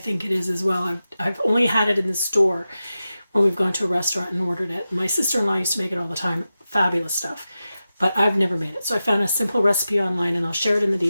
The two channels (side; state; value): both; inverted; correlation -0.92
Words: it is as well. I've only had it in the store when we've gone to a restaurant and ordered it. My sister-in-law used to make it all the time. Fabulous stuff. But I've never made it. So I found a simple recipe online, and I'll share it in the